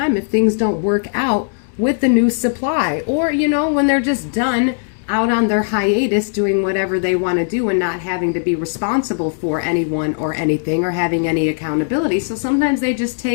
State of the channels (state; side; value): silent; right; 67 dB below the other